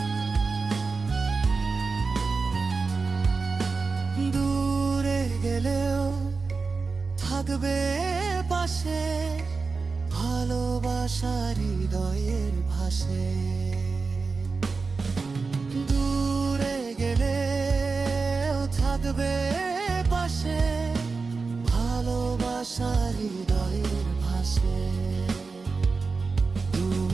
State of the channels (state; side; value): quieter; left; 4.4 dB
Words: দূরে গেলেও থাকবে পাশে, ভালোবাসার হৃদয়ের ভাষে। দূরে গেলেও থাকবে পাশে, ভালোবাসার হৃদয়ের ভাষে।